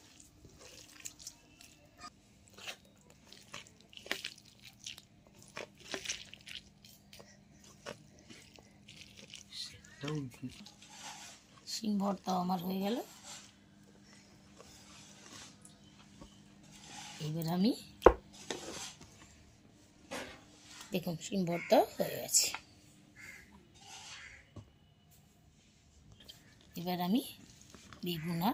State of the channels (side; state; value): both; identical; correlation 1.00